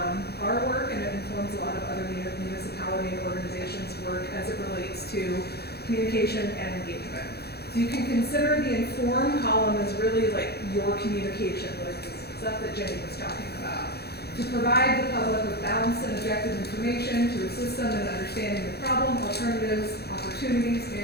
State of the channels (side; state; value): right; late; 0.47 ms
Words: our work, and it informs a lot of other municipality and organizations' work as it relates to communication and engagement. So you can consider the inform column as really like your communication, like the stuff that Jenny was talking about. To provide the public with balanced and objective information, to assist them in understanding the problem, alternatives, opportunities,